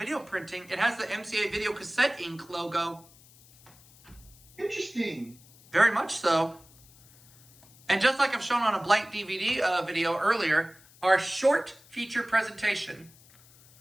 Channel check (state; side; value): noise; left; hiss, 26 dB below the sound